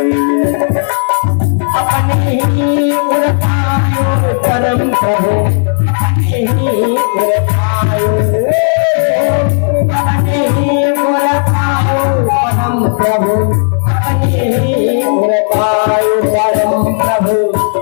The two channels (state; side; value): silent; right; digital silence